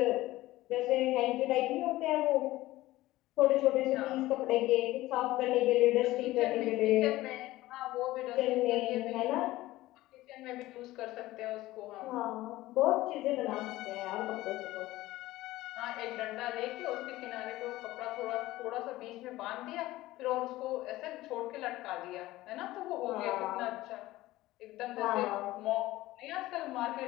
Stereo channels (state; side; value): quieter; right; 17.2 dB